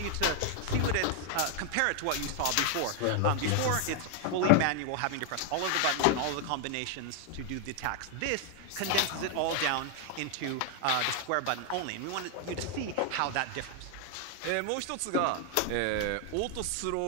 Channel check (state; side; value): different; both; correlation 0.00